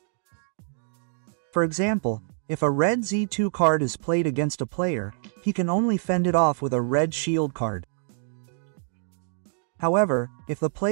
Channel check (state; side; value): silent; left; 61 dB below the other